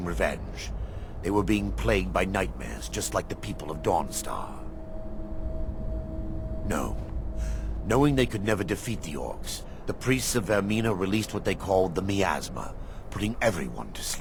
revenge. They were being plagued by nightmares, just like the people of Dawnstar. No. Knowing they could never defeat the orcs, the priests of Vermina released what they called the miasma, putting everyone to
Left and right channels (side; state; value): both; identical; correlation 1.00